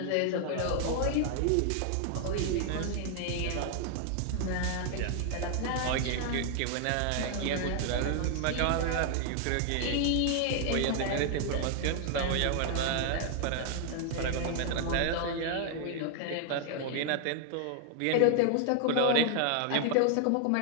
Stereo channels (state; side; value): different; both; correlation 0.00